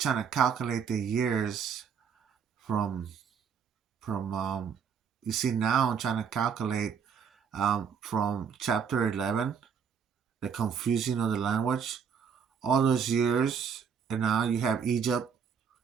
to calculate the years from from. You see, now I'm trying to calculate from chapter 11, the confusion of the language, all those years, and now you have Egypt.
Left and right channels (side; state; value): left; quieter; 7.0 dB